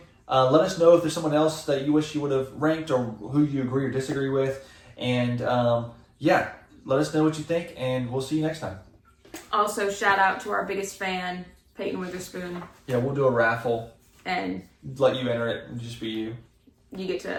Let us know if there's someone else that you wish you would have ranked or who you agree or disagree with. And, let us know what you think, and we'll see you next time. Also, shout out to our biggest fan, Peyton Witherspoon. Yeah, we'll do a raffle. And let you enter it and just be you. You get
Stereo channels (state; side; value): identical; both; correlation 1.00